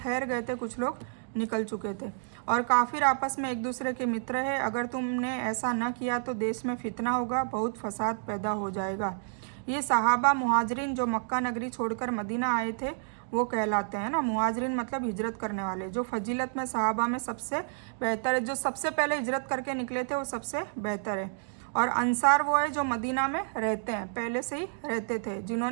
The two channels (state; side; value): silent; left; digital silence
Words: गए थे, कुछ लोग निकल चुके थे। और काफिर आपस में एक दूसरे के मित्र है, अगर तुमने ऐसा न किया तो देश में फितना होगा, बहुत फसाद पैदा हो जाएगा। ये सहाबा मुहाजिरिन जो मक्का नगरी छोड़कर मदीना आए थे वो कहलाते हैं ना। मुहाजिरिन मतलब हिजरत करने वाले, जो फजीलत में सहाबा में सबसे बेहतर है, जो सबसे पहले हिजरत करके निकले थे वो सबसे बेहतर है। और अंसार वो है जो मदीना में रहते हैं, पहले से ही रहते थे,